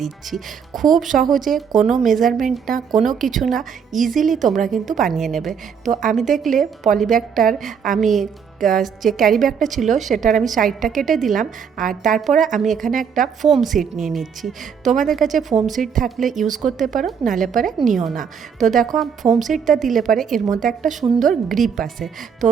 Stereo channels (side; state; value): left; quieter; 7.0 dB